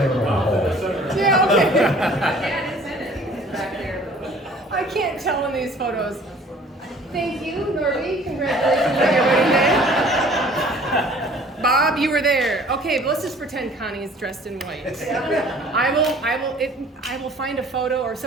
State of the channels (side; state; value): both; normal; correlation 0.52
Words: Yeah, okay. I can't tell in these photos. Thank you, Norby. Congratulations on your wedding day. Bob, you were there. Okay, but let's just pretend Connie's dressed in white. I will find a photo, or